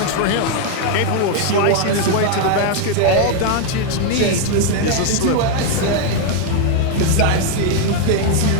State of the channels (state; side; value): different; both; correlation 0.00